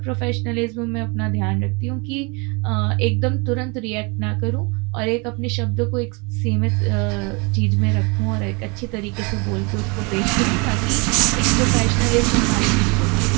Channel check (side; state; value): left; quieter; 30.2 dB